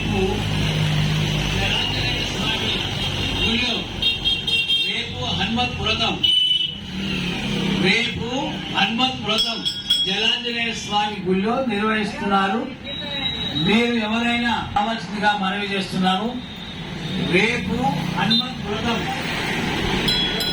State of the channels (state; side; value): identical; both; correlation 1.00